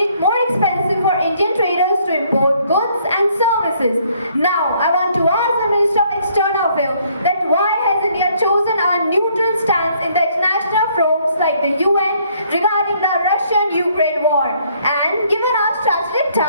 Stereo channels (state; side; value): inverted; both; correlation -0.65